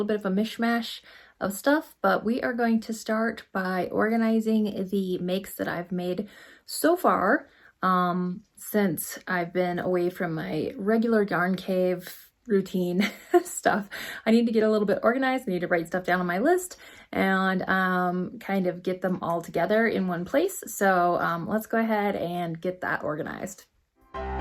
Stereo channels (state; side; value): identical; both; correlation 1.00